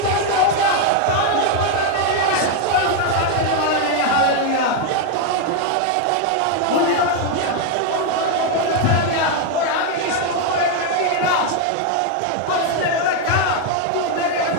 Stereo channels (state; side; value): different; both; correlation 0.01